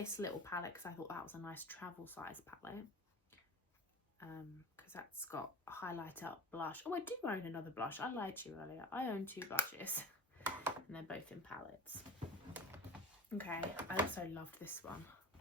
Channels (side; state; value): both; normal; correlation 0.36